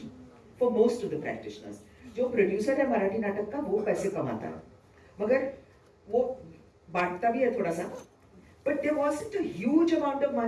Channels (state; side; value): identical; both; correlation 1.00